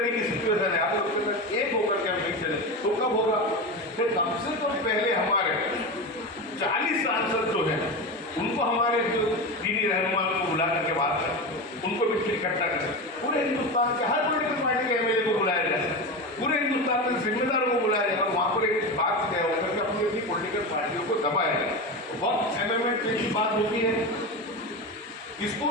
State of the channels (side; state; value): both; normal; correlation 0.21